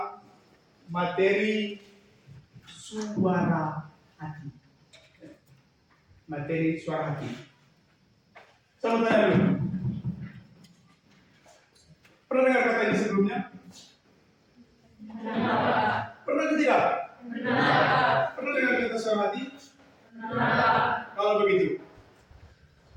materi suara hati. Materi suara hati. Saya mau tanya dulu. Pernah dengar kata ini sebelumnya? Pernah atau tidak? Pernah dengar kata suara hati? Kalau begitu,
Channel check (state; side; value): identical; both; correlation 1.00